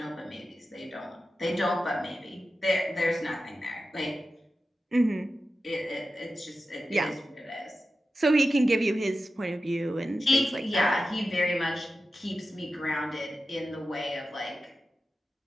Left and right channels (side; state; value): both; normal; correlation 0.92